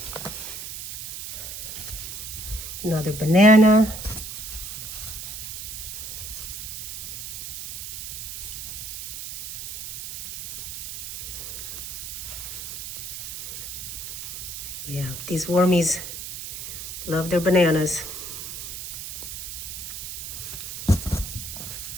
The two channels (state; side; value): noise; right; hiss, 7 dB below the sound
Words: Another banana. Yeah, these wormies love their bananas.